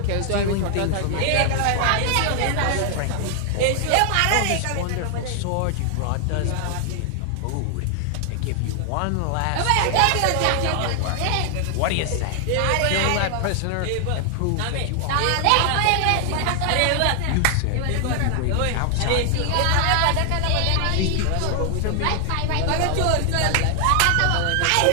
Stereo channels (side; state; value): both; different; correlation 0.00